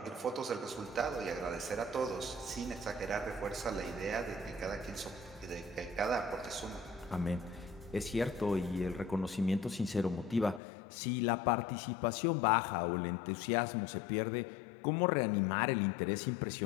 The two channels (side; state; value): right; drops out; at 10.6 s